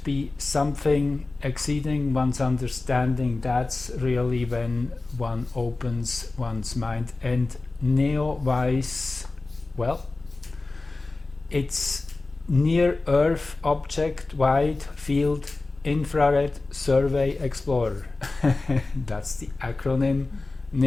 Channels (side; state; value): right; quieter; 3.4 dB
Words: be something exceeding one's understanding, that's really when one opens one's mind. And NEOWISE, well, it's Near Earth Object Wide Field Infrared Survey Explorer. That's the acronym